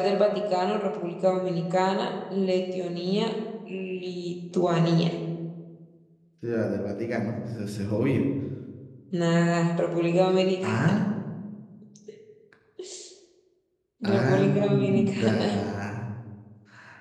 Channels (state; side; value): identical; both; correlation 1.00